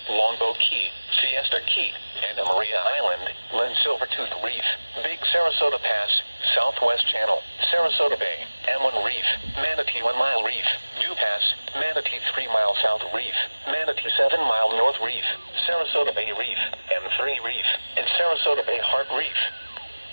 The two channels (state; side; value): inverted; both; correlation -1.00